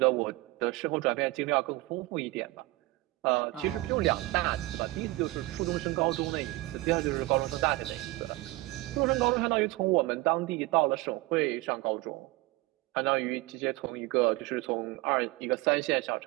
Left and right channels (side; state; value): left; quieter; 20.7 dB